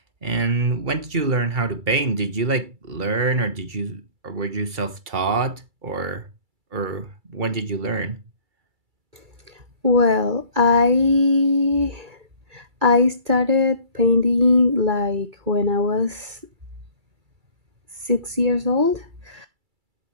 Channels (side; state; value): left; late; 2.3 ms